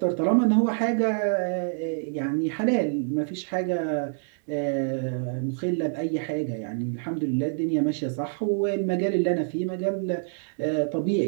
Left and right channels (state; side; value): silent; left; digital silence